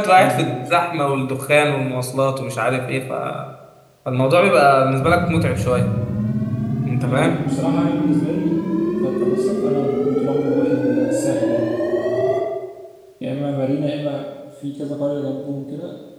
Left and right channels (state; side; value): identical; both; correlation 1.00